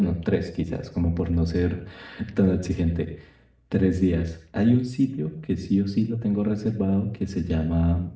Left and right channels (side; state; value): both; identical; correlation 1.00